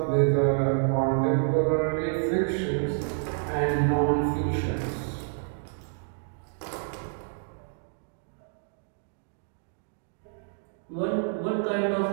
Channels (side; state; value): left; silent; digital silence